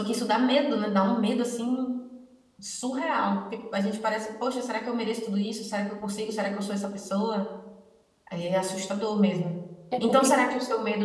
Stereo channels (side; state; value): both; identical; correlation 1.00